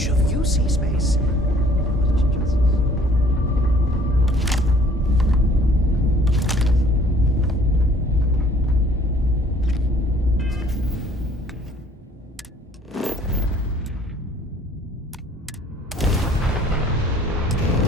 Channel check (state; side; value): normal; both; correlation 0.56